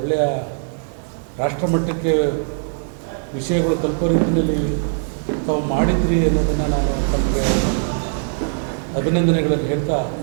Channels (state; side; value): silent; left; 55 dB below the other